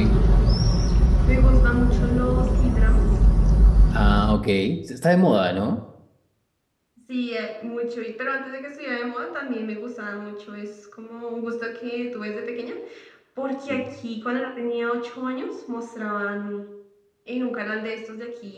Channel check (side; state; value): both; identical; correlation 1.00